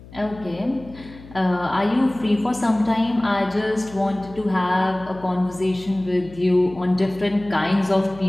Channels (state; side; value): noise; left; hum, 19 dB below the sound